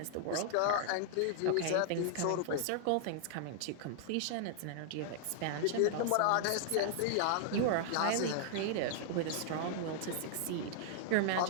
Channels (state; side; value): different; both; correlation -0.01